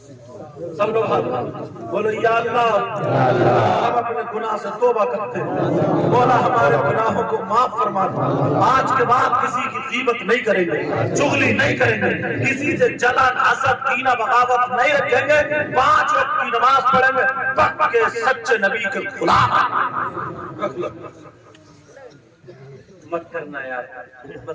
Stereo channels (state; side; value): identical; both; correlation 1.00